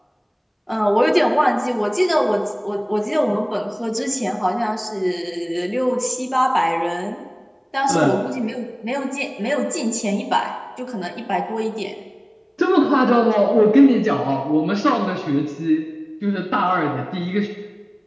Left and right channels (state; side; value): identical; both; correlation 1.00